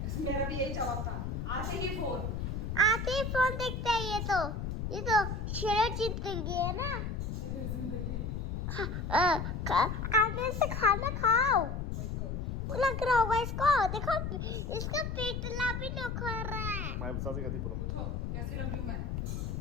मेरा भी यही जवाब था, आते ही फोन देखते हैं। ये तो शेर जिंदगी है ना। आगे से खाना खाओ, लग रहा होगा इसको। देखो इसका पेटला भी निखर रहा है। उठो, कैसी लग रही हूँ मैं?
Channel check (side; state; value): left; noise; rumble, 3 dB below the sound